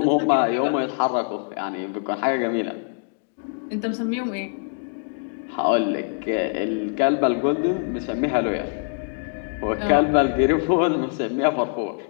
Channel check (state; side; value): silent; right; 58 dB below the other